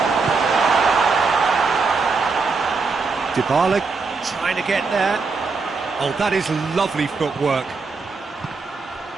Dybala trying to get there. Oh, that is lovely footwork.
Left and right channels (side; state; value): left; quieter; 4.5 dB